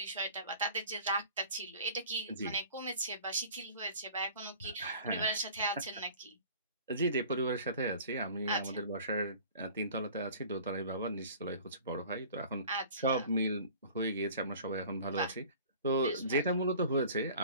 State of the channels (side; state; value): both; inverted; correlation -0.45